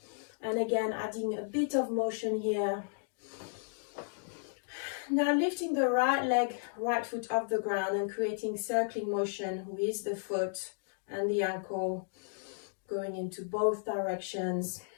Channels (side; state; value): right; silent; digital silence